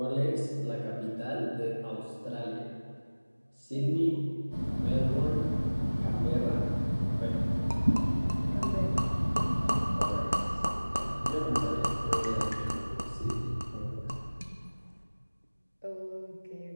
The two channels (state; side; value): inverted; both; correlation -1.00